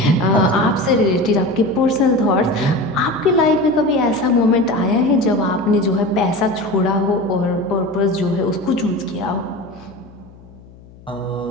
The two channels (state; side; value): noise; left; hum, 23 dB below the sound